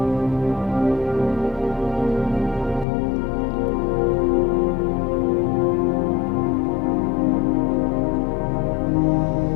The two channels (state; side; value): drops out; right; at 2.9 s